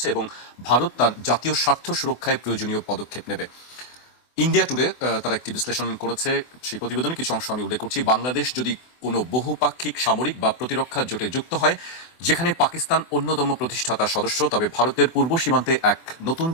এবং ভারত তার জাতীয় স্বার্থ সুরক্ষায় প্রয়োজনীয় পদক্ষেপ নেবে। ইন্ডিয়া টুডে তারা একটি বিশ্লেষণ করেছে, সেই প্রতিবেদনে কিছু অংশ আমি উল্লেখ করছি। বাংলাদেশ যদি কোনো বহুপাক্ষিক সামরিক বা প্রতিরক্ষা জোটে যুক্ত হয়, যেখানে পাকিস্তান অন্যতম প্রতিষ্ঠাতা সদস্য, তবে ভারতের পূর্ব সীমান্তে এক নতুন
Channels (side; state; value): right; late; 24 ms